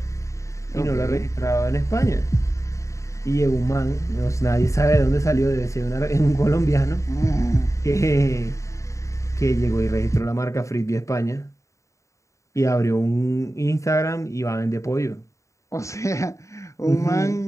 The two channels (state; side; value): late; right; 0.15 ms